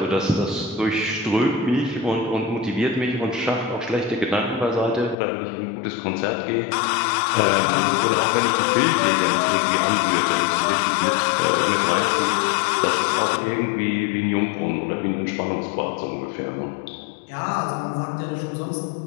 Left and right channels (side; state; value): right; drops out; at 5.2 s